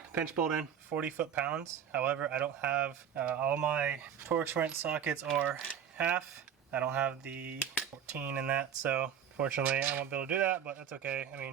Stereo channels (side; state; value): left; quieter; 8.6 dB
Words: pinch bolt in, 40 foot-pounds. However, I don't have, all my Torx wrench sockets are half. I don't have the 14 in that, so fortunately I won't be able to do that, but that's okay. I